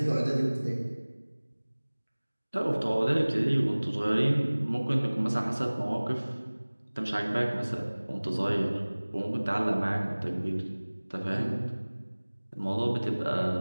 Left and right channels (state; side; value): inverted; both; correlation -1.00